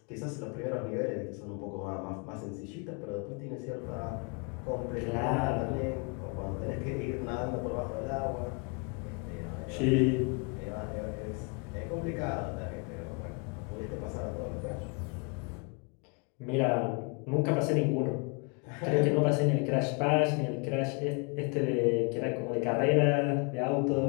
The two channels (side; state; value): right; quieter; 34.4 dB